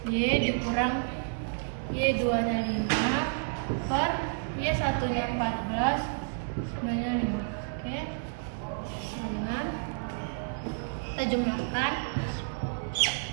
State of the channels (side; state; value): left; silent; digital silence